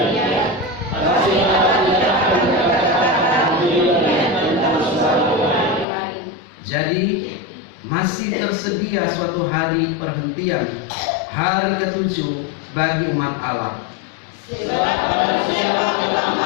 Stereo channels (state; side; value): drops out; right; at 5.9 s